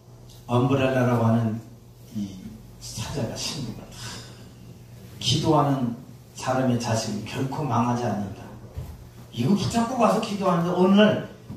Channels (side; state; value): both; identical; correlation 1.00